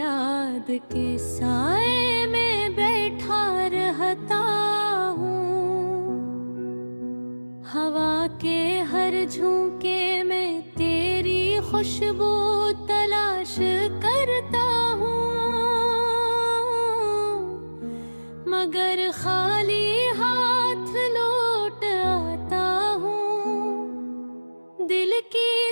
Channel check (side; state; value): both; inverted; correlation -1.00